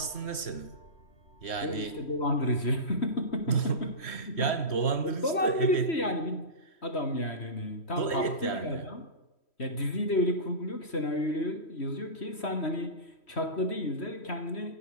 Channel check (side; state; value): right; late; 3.1 ms